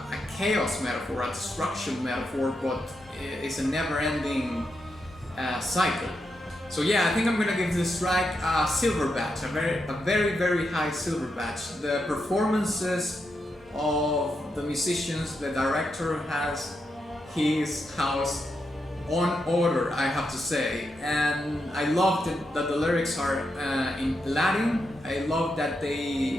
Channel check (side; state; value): both; normal; correlation 0.84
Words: chaos metaphor, a destruction metaphor, but it's a never-ending cycle. So yeah, I think I'm gonna give this track a silver badge, a very high silver badge. The performances of the musicians, the director has his house on order, I have to say, and I love that the lyrics are in Latin. I love that